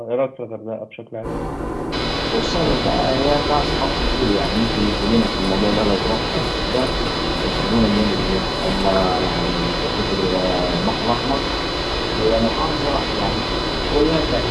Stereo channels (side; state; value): both; identical; correlation 1.00